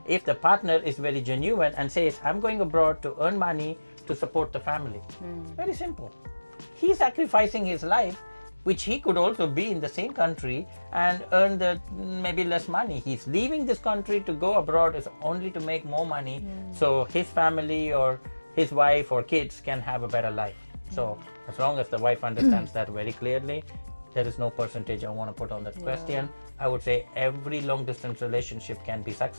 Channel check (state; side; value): inverted; both; correlation -1.00